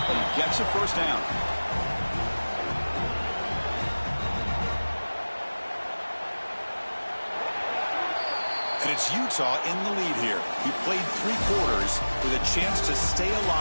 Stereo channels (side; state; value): both; inverted; correlation -1.00